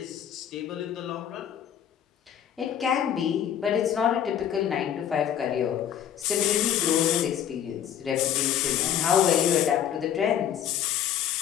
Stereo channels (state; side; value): quieter; right; 9.7 dB